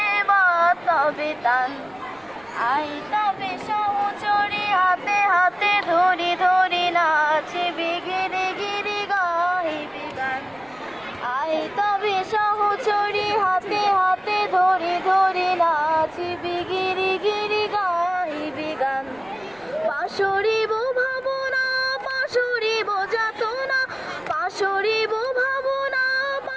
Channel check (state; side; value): noise; right; rumble, 29 dB below the sound